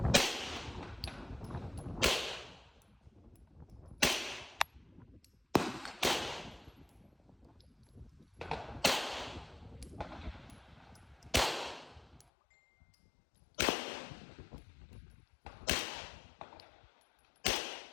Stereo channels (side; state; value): right; drops out; at 12.2 s